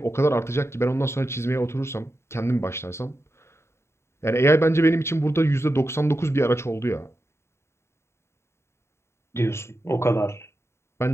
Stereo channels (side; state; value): right; late; 0.13 ms